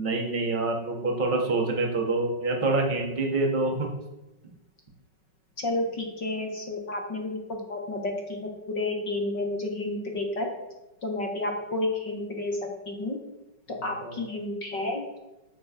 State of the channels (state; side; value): late; right; 5.4 ms